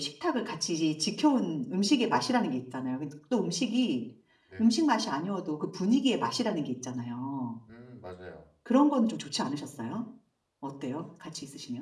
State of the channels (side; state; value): both; identical; correlation 1.00